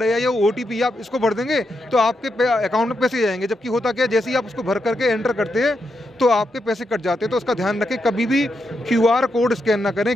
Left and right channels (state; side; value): normal; both; correlation 0.84